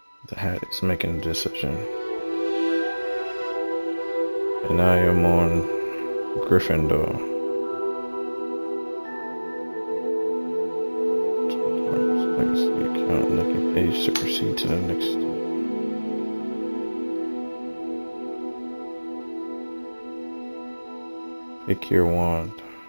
The hat is making a decision. And I am on Gryffindor. Legacy account, lucky page to proceed to the next step. Pick your wand.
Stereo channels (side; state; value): both; inverted; correlation -1.00